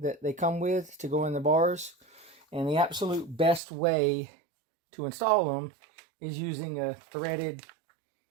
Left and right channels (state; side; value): drops out; left; at 3.6 s